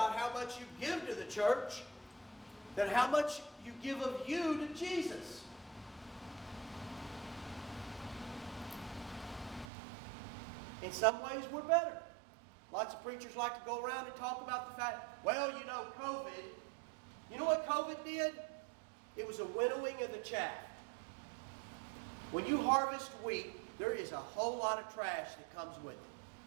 how much you give to the church than how much you give of you to Jesus. In some ways, we're better. Lots of preachers like to go around and talk about the fact, well, you know, COVID. You know what COVID did? It was a winnowing of the chaff. When you harvest wheat, there is a whole lot of trash that comes with it.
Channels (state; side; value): drops out; left; at 9.7 s